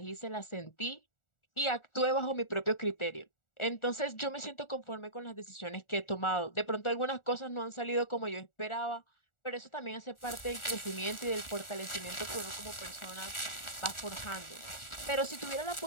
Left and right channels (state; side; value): late; right; 1.4 ms